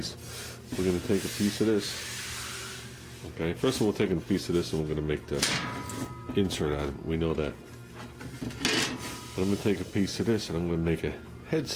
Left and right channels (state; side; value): identical; both; correlation 1.00